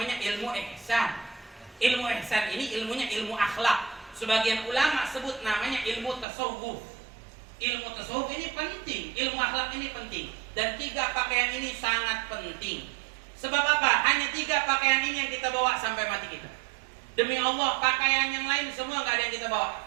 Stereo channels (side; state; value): left; drops out; at 6.2 s